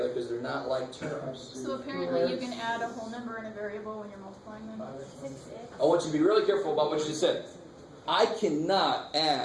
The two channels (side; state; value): both; identical; correlation 1.00